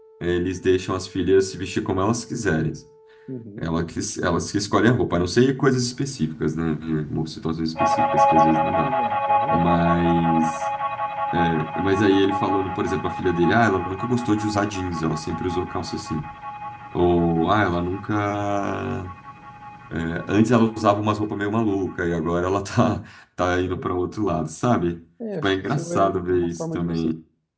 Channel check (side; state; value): both; identical; correlation 1.00